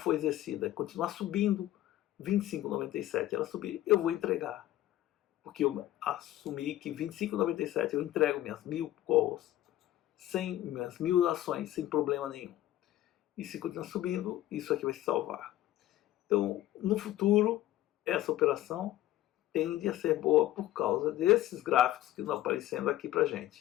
exercida e continuar subindo, 25,97 ela subir, eu vou entregar. Porque eu assumi que 25,97 eu entrego minhas 1000 calls, minhas 1000 ações, sem problema nenhum. E se continuar subindo, isso aqui vai se salvar. Então, no futuro, essa operação tende a ser boa por causa desses gráficos que estão aparecendo aqui para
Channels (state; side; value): quieter; right; 14.4 dB